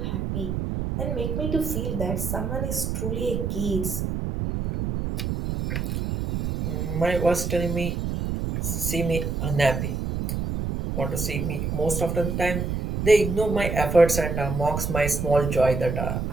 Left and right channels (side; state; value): right; noise; rumble, 2 dB below the sound